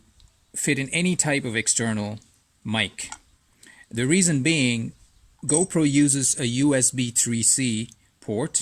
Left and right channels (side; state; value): both; identical; correlation 1.00